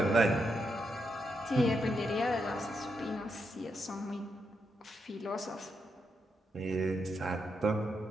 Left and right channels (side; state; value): both; normal; correlation 0.82